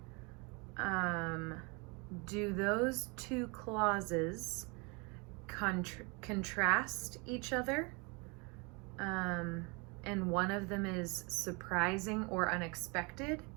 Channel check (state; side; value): quieter; left; 30.2 dB